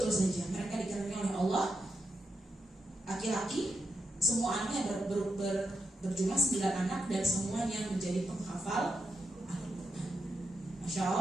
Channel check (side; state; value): both; normal; correlation 0.85